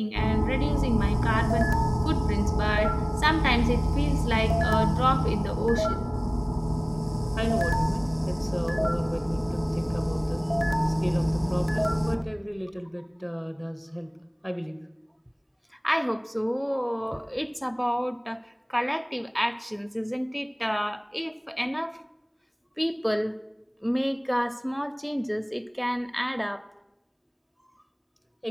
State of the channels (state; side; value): identical; both; correlation 1.00